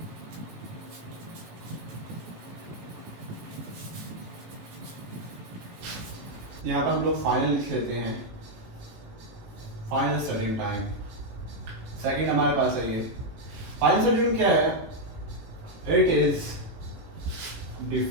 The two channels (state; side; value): late; left; 18 ms